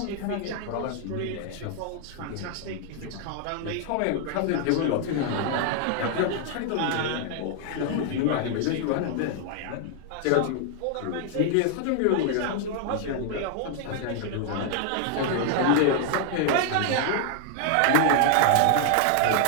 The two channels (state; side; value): different; both; correlation 0.00